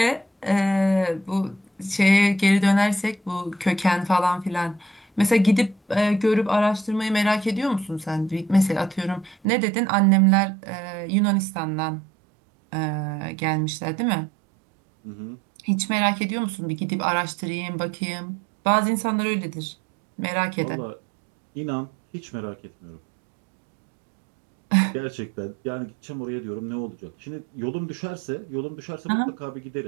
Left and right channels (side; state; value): left; drops out; at 9.5 s